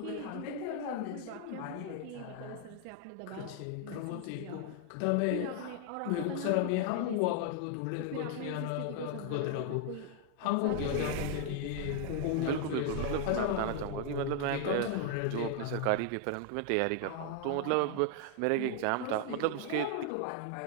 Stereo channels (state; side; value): different; both; correlation 0.00